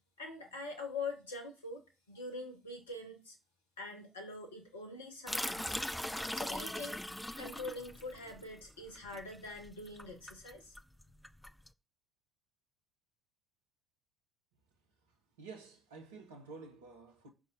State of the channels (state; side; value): normal; both; correlation 0.62